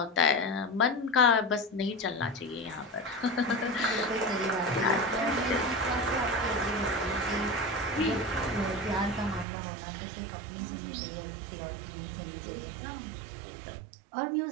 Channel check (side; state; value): left; drops out; at 9.5 s